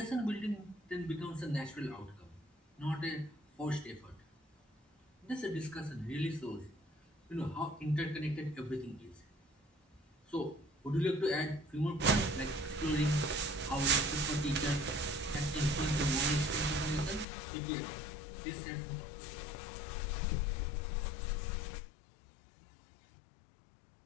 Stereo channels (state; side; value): drops out; right; at 17.2 s